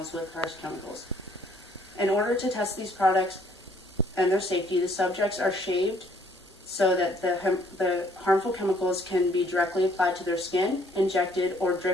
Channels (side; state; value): both; normal; correlation 0.63